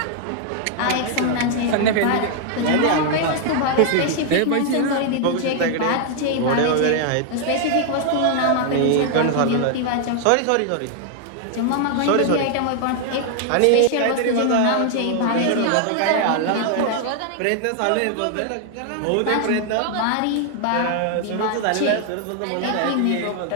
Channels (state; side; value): different; both; correlation 0.00